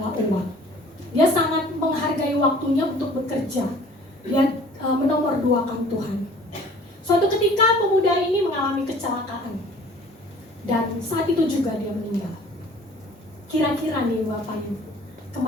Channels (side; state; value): both; normal; correlation 0.50